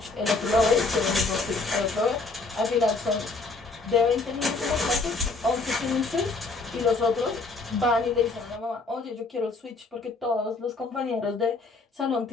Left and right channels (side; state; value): right; quieter; 3.7 dB